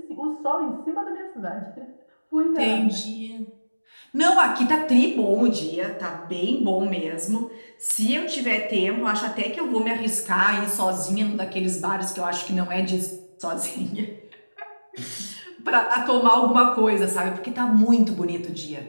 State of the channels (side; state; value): both; inverted; correlation -1.00